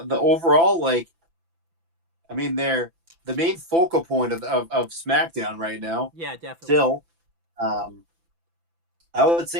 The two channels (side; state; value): left; late; 5.9 ms